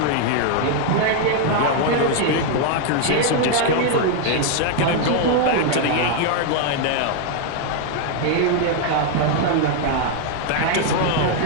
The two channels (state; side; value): different; both; correlation 0.00